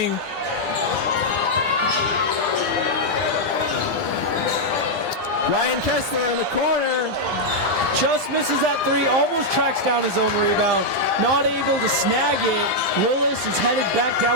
Ryan Kessler in the corner. Just misses that 3, almost tracks down his own rebound. Not able to snag it. Willis is headed back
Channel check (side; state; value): left; late; 9.9 ms